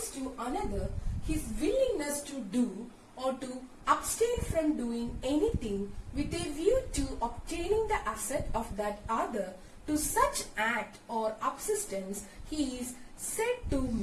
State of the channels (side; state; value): both; identical; correlation 1.00